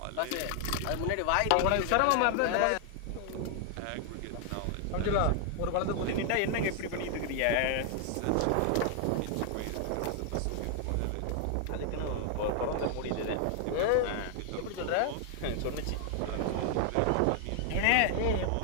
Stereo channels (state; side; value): different; both; correlation 0.00